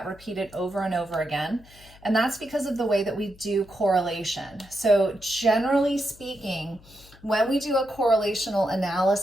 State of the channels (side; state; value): left; noise; hum, 24 dB below the sound